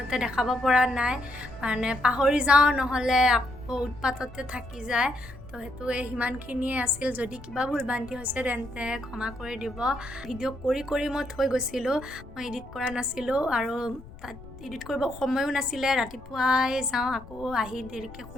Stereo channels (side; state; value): left; noise; rumble, 17 dB below the sound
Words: দেখাব পৰা নাই মানে পাহৰি যাওঁ নহ'লে আকৌ উৎপাততে থাকি যায় তো সেইটো সিমানখিনিয়ে আছিল যদি কিবা ভুল ভ্ৰান্তি হৈছে তেন্তে ক্ষমা কৰি দিব ভিডিঅ' কৰি মই থৈ গৈছিলোঁ মই এডিট কৰা নাছিলোঁ আৰু তাত এডিট কৰিব সময়ো নাছিলে ৰাতিপুৱাই যাওঁ আকৌ আহি দেৰিকৈ